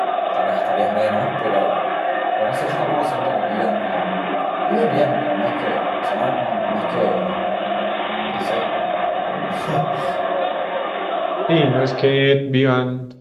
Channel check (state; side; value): identical; both; correlation 1.00